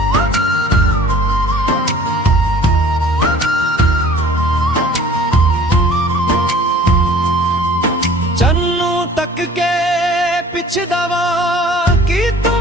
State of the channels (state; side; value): normal; both; correlation 0.49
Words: ਚੰਨੂ ਤੱਕ ਕੇ ਪਿਛਦਾ ਵਾਂ, ਕੀ ਤੂੰ